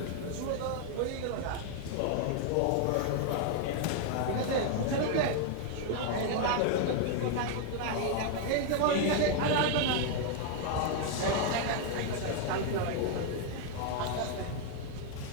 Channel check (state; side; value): different; both; correlation 0.00